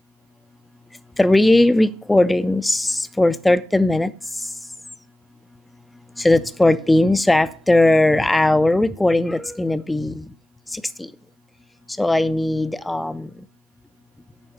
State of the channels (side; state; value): both; normal; correlation 0.97